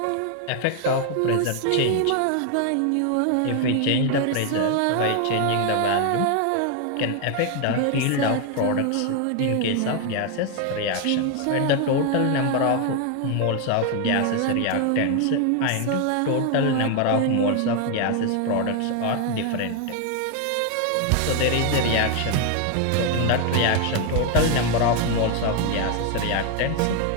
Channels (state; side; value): different; both; correlation 0.00